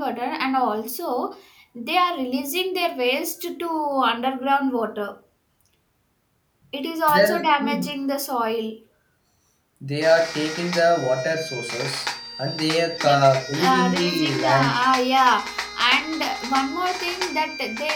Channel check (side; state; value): both; identical; correlation 1.00